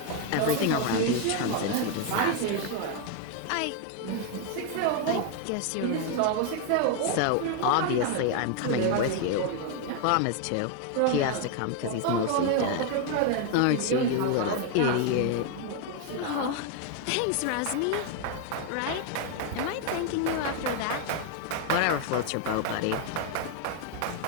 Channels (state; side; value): different; both; correlation 0.01